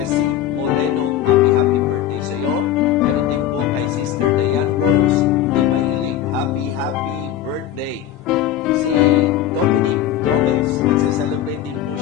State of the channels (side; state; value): right; quieter; 11.2 dB